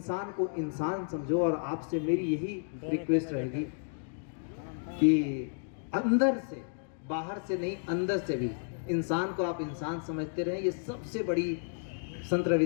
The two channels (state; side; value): silent; right; digital silence